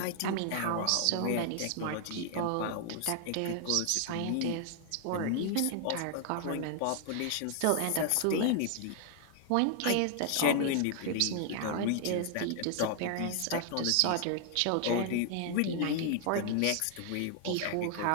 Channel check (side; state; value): both; different; correlation 0.00